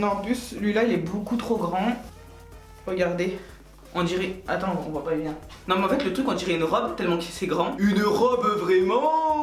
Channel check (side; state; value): both; identical; correlation 1.00